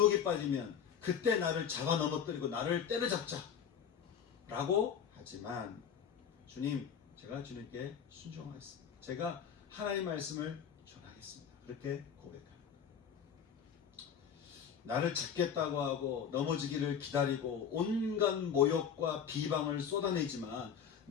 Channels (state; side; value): quieter; right; 7.8 dB